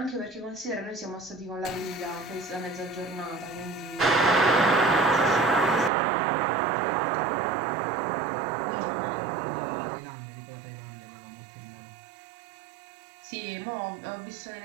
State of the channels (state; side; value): drops out; left; at 5.9 s